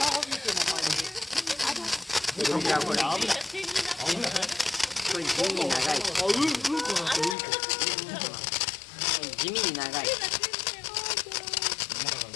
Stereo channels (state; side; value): drops out; right; at 7.4 s